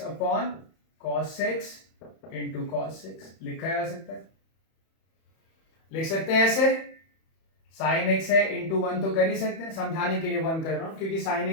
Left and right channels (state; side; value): late; right; 31 ms